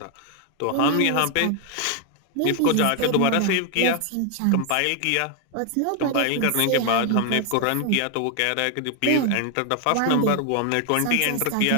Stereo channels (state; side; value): different; both; correlation 0.00